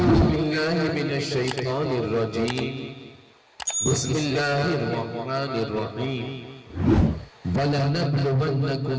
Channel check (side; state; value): both; identical; correlation 1.00